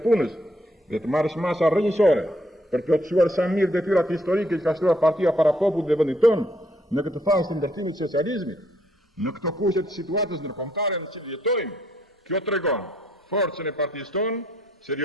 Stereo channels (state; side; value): normal; both; correlation 0.69